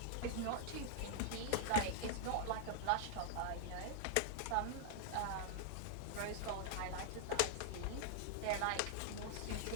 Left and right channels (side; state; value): both; different; correlation -0.01